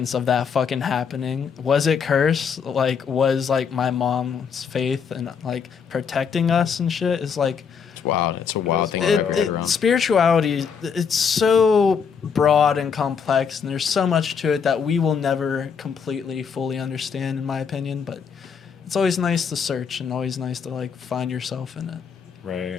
of that fucking happening. Was it cursed? Like, was like my mom's faith and like protecting us and shit? Is like, It's wild. It's a wild thing wild. to wrap your head around. spirituality, it's so broad and complex, and there's so much to it that we will never completely fully understand, in my opinion. But it's always nice to search and always nice to like find yourself in it.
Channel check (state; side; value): quieter; right; 6.5 dB